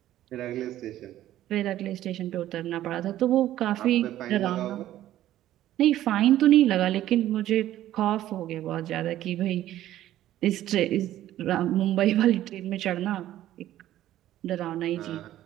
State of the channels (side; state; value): left; quieter; 13.3 dB